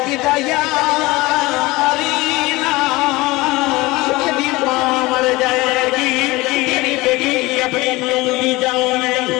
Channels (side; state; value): right; quieter; 21.2 dB